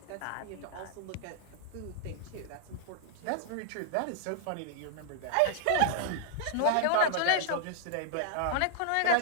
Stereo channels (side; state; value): both; different; correlation -0.01